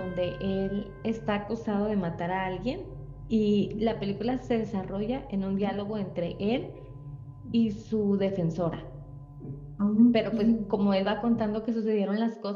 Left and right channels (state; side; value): identical; both; correlation 1.00